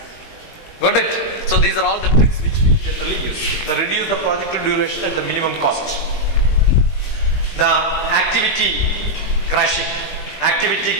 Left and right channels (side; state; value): right; late; 20 ms